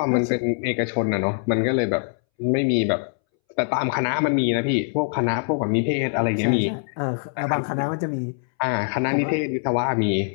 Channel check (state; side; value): silent; right; 63 dB below the other